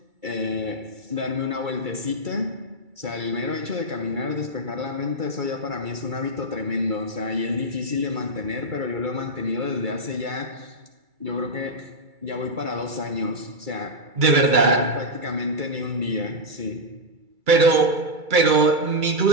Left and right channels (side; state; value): left; late; 2.3 ms